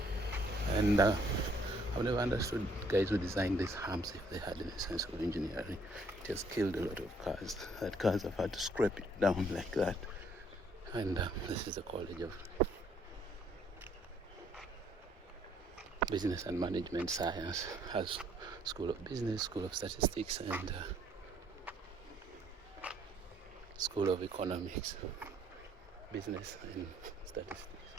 And I've never understood guys who designed these humps if they had any sense of engineering. It has killed a lot of cars. That cars have had to scrape it down like that. And this is the College of Business and Management Science. Has School of Business, School of Statistics, and School of Economics, Business and Statistics.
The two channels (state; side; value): normal; both; correlation 0.65